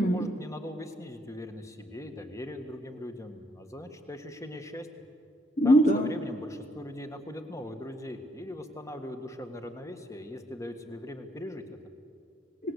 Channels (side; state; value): both; normal; correlation 0.71